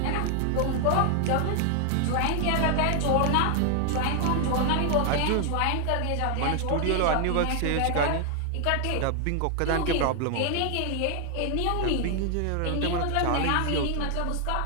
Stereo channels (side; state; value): both; different; correlation 0.00